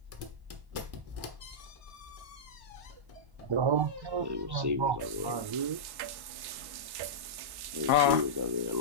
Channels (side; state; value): left; late; 1.1 ms